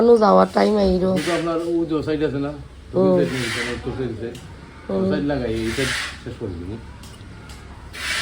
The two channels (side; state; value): both; identical; correlation 1.00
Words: যাওয়ার টাইম আইরো। আপনার ও যে সাইড আছে না সাইড লাগাই এটা শেষ করে দিন